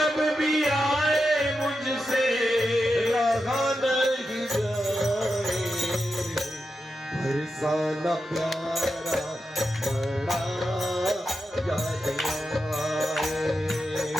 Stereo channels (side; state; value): both; normal; correlation 0.89